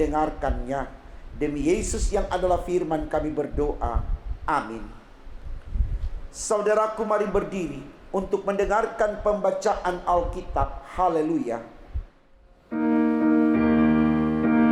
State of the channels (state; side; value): identical; both; correlation 1.00